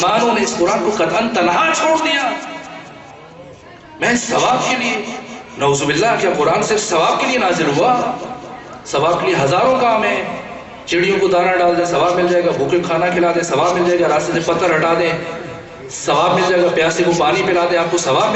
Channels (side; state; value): both; identical; correlation 1.00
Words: نے اس قرآن کو قطعاً تنہا چھوڑ دیا. میں ثواب کے لیے، نعوذ باللہ، کیا قرآن صرف ثواب کے لیے نازل ہوا؟ ثواب کے لیے ہزاروں کام ہیں. چڑیوں کو دانہ ڈال دیں ثواب مل جائے گا، بھوکے کو کھانا کھلا دیں ثواب مل جائے گا، راستے سے پتھر ہٹا دیں ثواب مل جائے گا، پیاسے کو پانی پلا دیں آپ کو ثواب